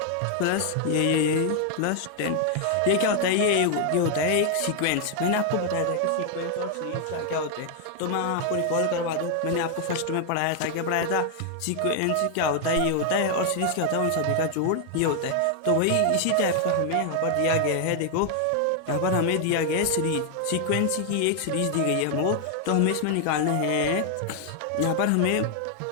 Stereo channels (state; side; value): different; both; correlation 0.00